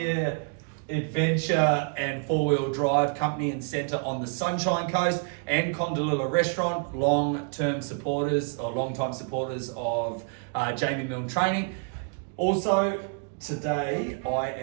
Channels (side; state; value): left; quieter; 39.3 dB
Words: adventure and four-wheel drive company and centre on the Sunshine Coast, and Condalilla Restaurant, long-time supporters of Jamie Milne Training. Also, today I